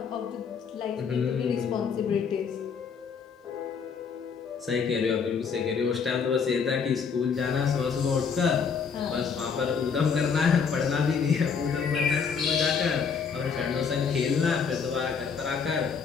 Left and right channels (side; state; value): right; quieter; 6.1 dB